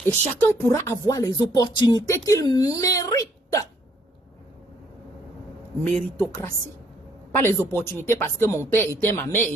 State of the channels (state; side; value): normal; both; correlation 0.66